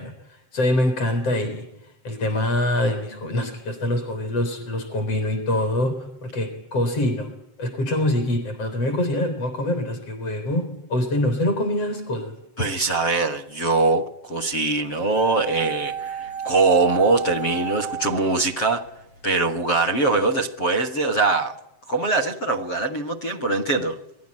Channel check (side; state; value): right; late; 7.6 ms